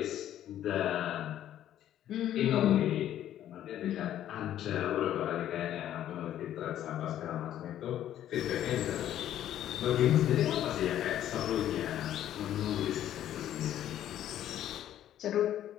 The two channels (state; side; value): quieter; right; 11.6 dB